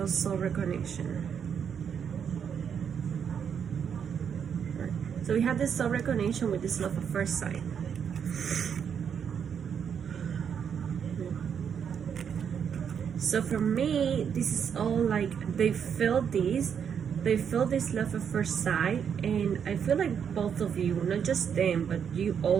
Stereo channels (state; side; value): quieter; left; 7.6 dB